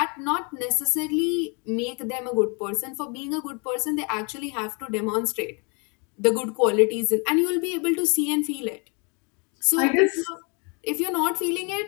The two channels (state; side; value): quieter; right; 33.7 dB